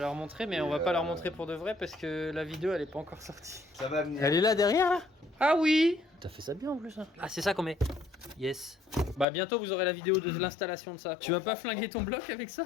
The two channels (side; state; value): right; drops out; at 9.2 s